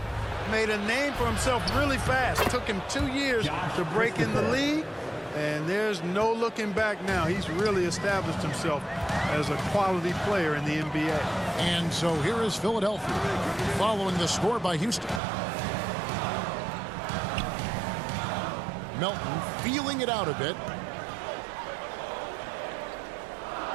made a name for himself really fast. It took him 2 years to break in the league, and there's no looking back now. He's really established himself as a quality player in the NBA. And so here is Philadelphia following the score by Houston. Melton feeling it out a bit.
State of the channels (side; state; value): left; drops out; at 15.2 s